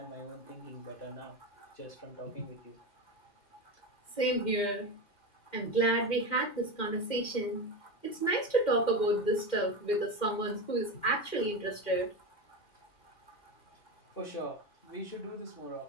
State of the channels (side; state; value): right; late; 2.1 ms